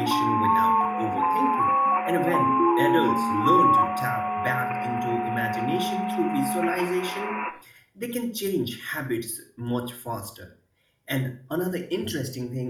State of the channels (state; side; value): identical; both; correlation 1.00